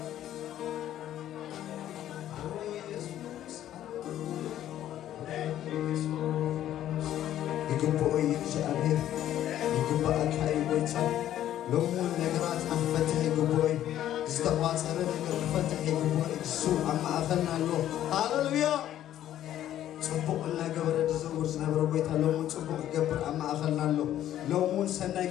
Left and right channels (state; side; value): quieter; right; 12.0 dB